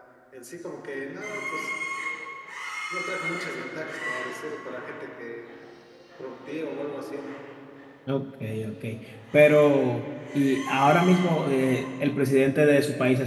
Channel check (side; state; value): both; identical; correlation 1.00